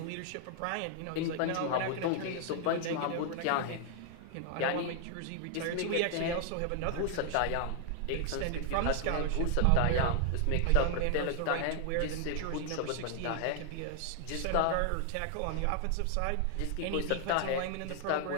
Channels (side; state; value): both; different; correlation 0.00